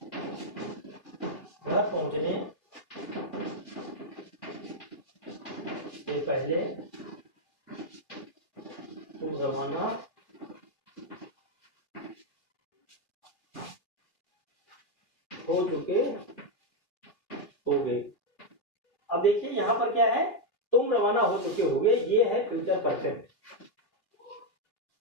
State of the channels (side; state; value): right; late; 3.1 ms